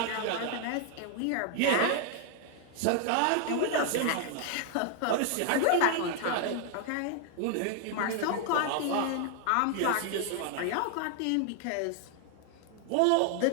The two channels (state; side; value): different; both; correlation 0.00